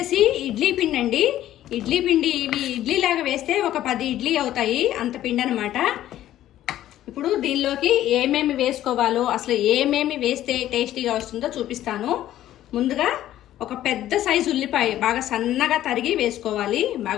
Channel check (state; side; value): quieter; right; 13.0 dB